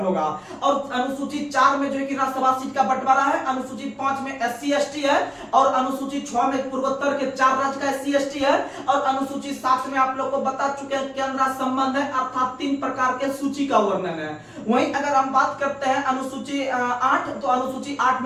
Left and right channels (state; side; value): identical; both; correlation 1.00